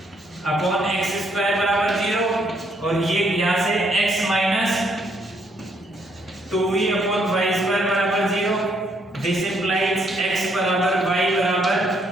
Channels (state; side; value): normal; both; correlation 0.71